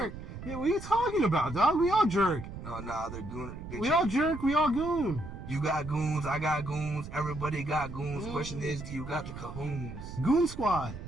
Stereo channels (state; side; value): noise; right; rumble, 10 dB below the sound